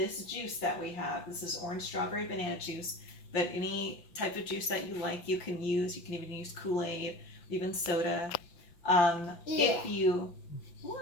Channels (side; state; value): right; late; 5.8 ms